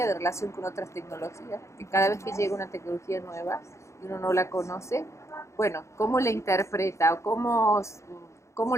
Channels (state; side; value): late; right; 0.14 ms